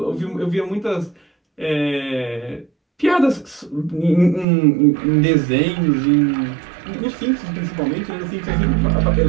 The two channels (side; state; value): left; drops out; at 4.5 s